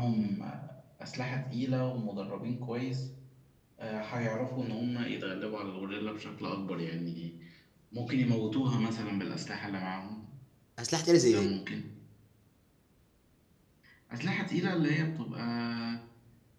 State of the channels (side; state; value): both; identical; correlation 1.00